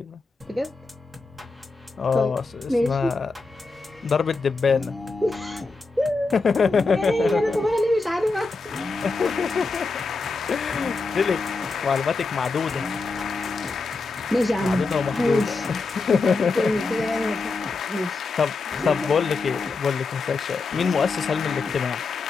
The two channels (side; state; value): right; quieter; 3.9 dB